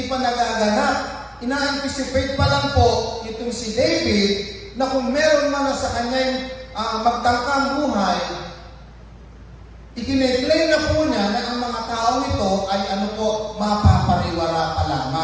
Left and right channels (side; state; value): both; identical; correlation 1.00